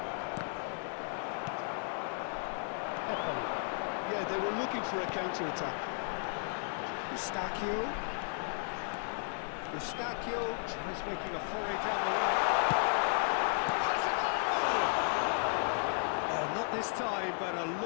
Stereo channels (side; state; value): right; silent; 55 dB below the other